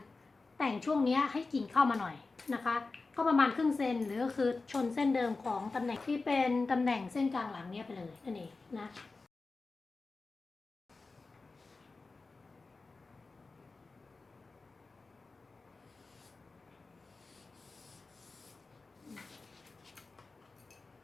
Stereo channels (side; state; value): right; quieter; 3.8 dB